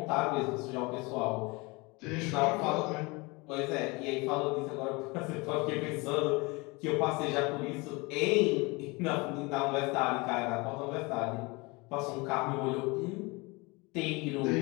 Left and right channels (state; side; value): quieter; right; 25.9 dB